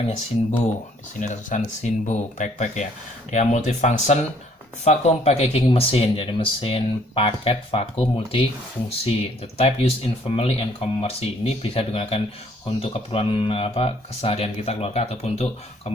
Sinbo. Di sini ada tulisan Sinbo backpack ya. Dia multifunction vacuum packaging mesin, jadi mesin paket vakum multifungsi. The type used in family and commercial. Ini bisa digunakan untuk keperluan keseharian kita keluarga ataupun untuk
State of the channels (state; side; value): normal; both; correlation 0.62